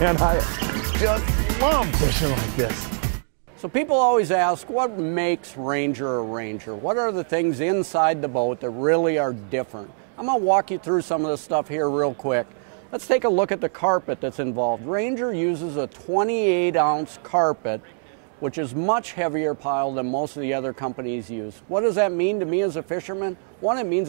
I just love fishing like this. So people always ask, what makes Ranger a Ranger? What are the things inside the boat that really are different? I'm going to walk you through some of this stuff here real quick. Let's take a look at the carpet that's involved. Ranger uses a 28-ounce carpet, which is much heavier pile than most of the other companies use. What does that mean to me as a fisherman? One, it means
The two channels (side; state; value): left; silent; digital silence